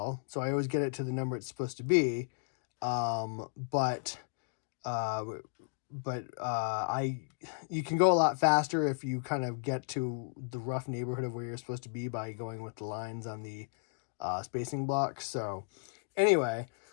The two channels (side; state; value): right; silent; digital silence